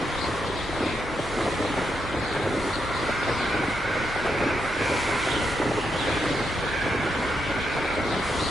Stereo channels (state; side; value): normal; both; correlation 0.82